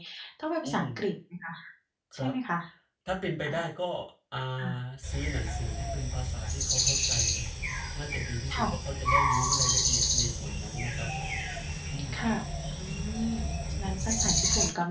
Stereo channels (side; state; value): both; identical; correlation 1.00